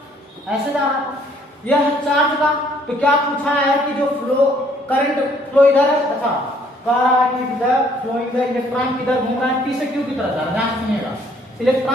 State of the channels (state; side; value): normal; both; correlation 0.62